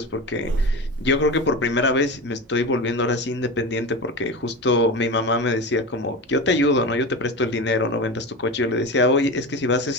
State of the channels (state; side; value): normal; both; correlation 0.25